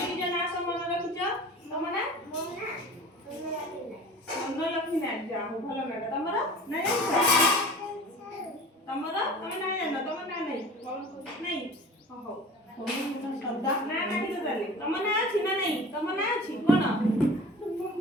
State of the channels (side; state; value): both; normal; correlation 0.41